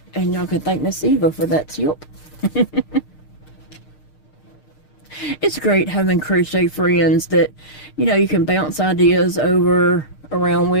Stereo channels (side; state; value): right; late; 6.6 ms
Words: And y'all can thank Miss Eva for that tip. It's great having crochet friends that, you know, you can bounce ideas around